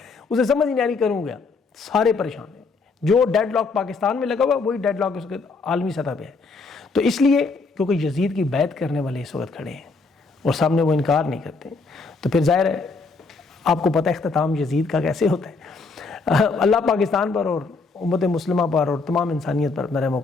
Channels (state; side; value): quieter; right; 4.2 dB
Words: اسے سمجھ نہیں آ رہی، کروں گیا۔ سارے پریشان ہیں، جو ڈیڈ لاک پاکستان میں لگا ہوا وہی ڈیڈ لاک اس کے عالمی سطح پہ ہے۔ تو اس لیے کیونکہ یزید کی بیعت کرنے والے اس وقت کھڑے ہیں اور سامنے وہ انکار نہیں کرتے، تو پھر ظاہر ہے آپ کو پتہ اختتام یزید کا کیسے ہوتا ہے۔ اللہ پاکستان پر اور امت مسلمہ پر اور تمام انسانیت پر اپنا رحم و